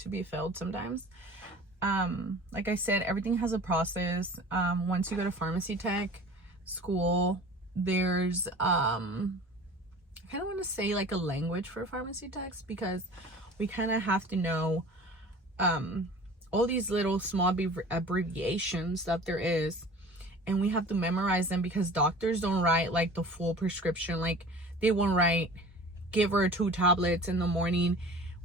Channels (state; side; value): normal; both; correlation 0.42